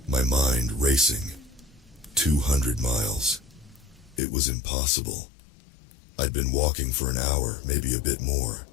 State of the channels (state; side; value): drops out; right; at 4.2 s